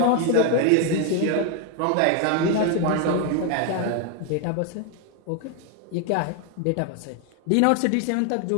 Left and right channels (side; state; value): both; different; correlation 0.01